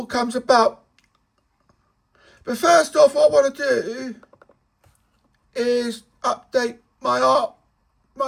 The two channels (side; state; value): both; identical; correlation 1.00